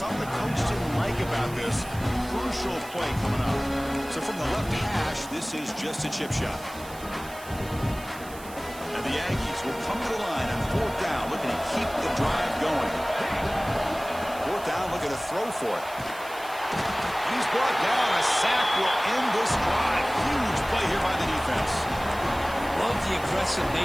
the coach didn't like about this. Crucial play coming up. So from the left hash, this is just a chip shot. And the Aggies will come to the line on fourth down, looking to keep the drive going. Fourth down, looking to throw for it. And he's brought down. A sack will end this drive. Huge play here by the defense. Love the aggressive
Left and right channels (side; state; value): right; noise; hiss, 17 dB below the sound